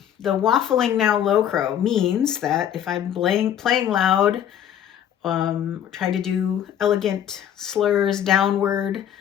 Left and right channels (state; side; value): quieter; right; 10.0 dB